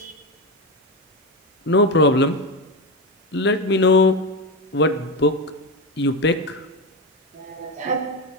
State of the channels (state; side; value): normal; both; correlation 0.15